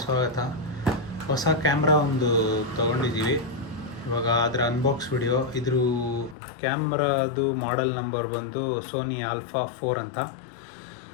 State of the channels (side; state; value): right; drops out; at 6.4 s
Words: ಸ್ವಾಗತ. ಹೊಸ ಕ್ಯಾಮ್ರಾ ಒಂದು ತೊಗೊಂಡಿದ್ದೀವಿ. ಇವಾಗ ಅದರ ಅನ್ಬಾಕ್ಸ್ ವಿಡಿಯೋ. ಇದ್ರ ಕ್ಯಾಮ್ರಾದು ಮಾಡೆಲ್ ನಂಬರ್ ಬಂದು ಸೋನಿ ಆಲ್ಫಾ 4 ಅಂತ.